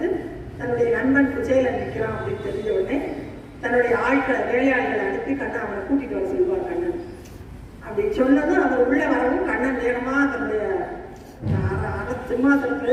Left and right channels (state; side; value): identical; both; correlation 1.00